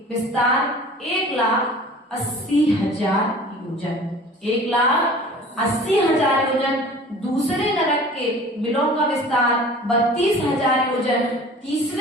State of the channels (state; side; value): normal; both; correlation 0.44